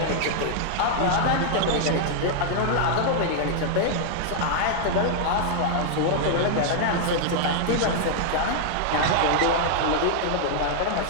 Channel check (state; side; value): different; both; correlation -0.01